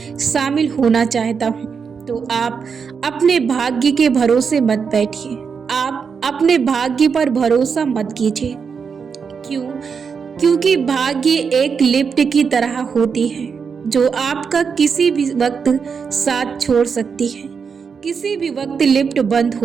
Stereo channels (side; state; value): left; quieter; 6.0 dB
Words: शामिल होना चाहता हूं, तो आप अपने भाग्य के भरोसे मत बैठिए। आप अपने भाग्य पर भरोसा मत कीजिए। क्यों? क्योंकि भाग्य एक लिफ्ट की तरह होती है जो आपका किसी भी वक्त साथ छोड़ सकती है। किसी भी वक्त लिफ्ट बंद